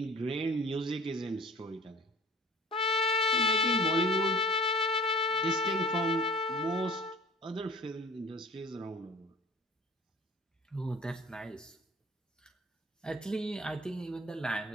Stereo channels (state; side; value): normal; both; correlation 0.45